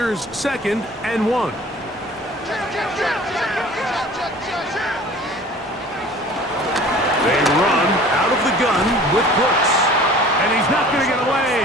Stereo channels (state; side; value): normal; both; correlation 0.46